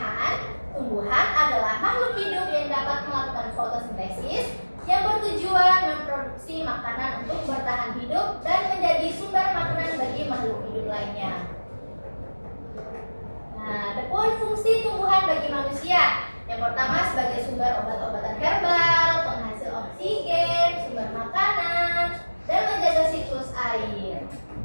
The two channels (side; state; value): both; inverted; correlation -1.00